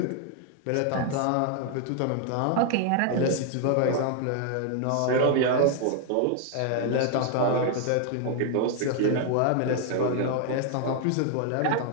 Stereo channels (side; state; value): both; different; correlation 0.00